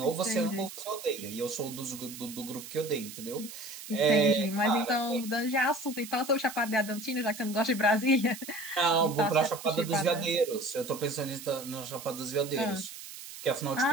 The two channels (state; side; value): noise; right; hiss, 13 dB below the sound